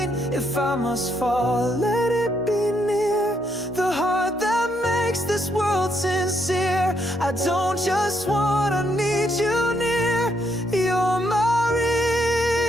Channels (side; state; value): both; normal; correlation 0.75